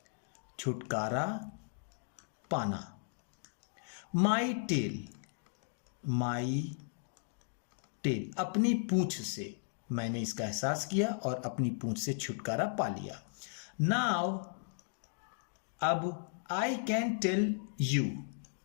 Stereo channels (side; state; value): right; silent; digital silence